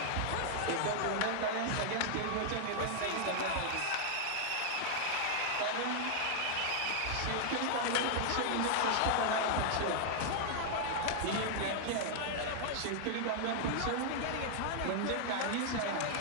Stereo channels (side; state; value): both; different; correlation -0.01